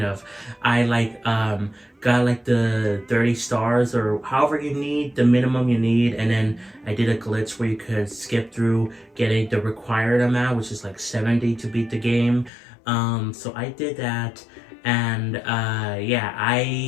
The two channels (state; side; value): drops out; right; at 12.5 s